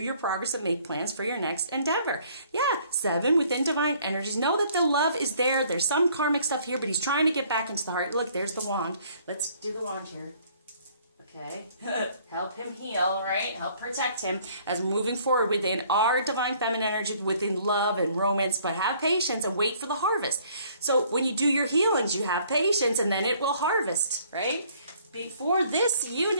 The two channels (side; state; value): both; inverted; correlation -0.60